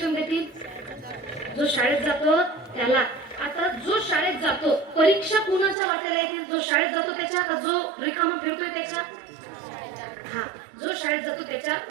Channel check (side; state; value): left; drops out; at 5.8 s